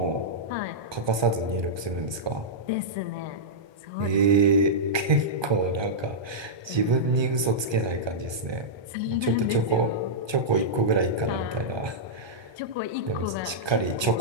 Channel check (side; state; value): left; late; 1.2 ms